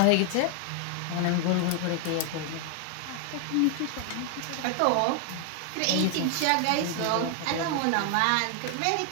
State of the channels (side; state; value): both; different; correlation 0.00